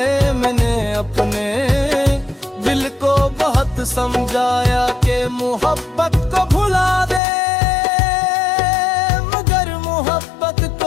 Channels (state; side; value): drops out; right; at 7.2 s